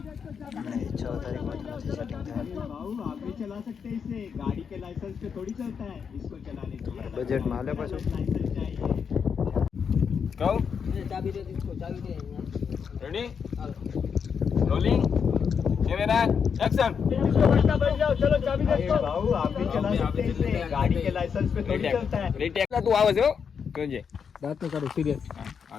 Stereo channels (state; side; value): quieter; right; 6.6 dB